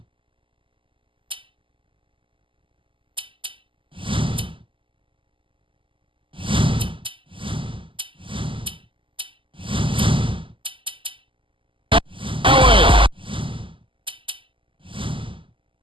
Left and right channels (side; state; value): left; late; 0.25 ms